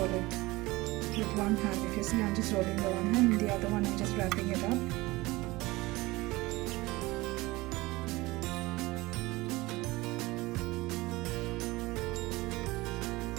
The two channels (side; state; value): left; quieter; 20.9 dB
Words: it with one hand. If you see, I'm just rolling the one hand, and the other one I'm just wrapping it up.